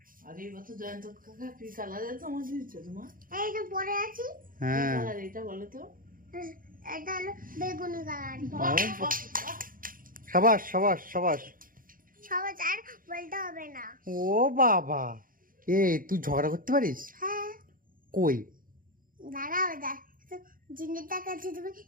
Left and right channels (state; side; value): late; left; 0.40 ms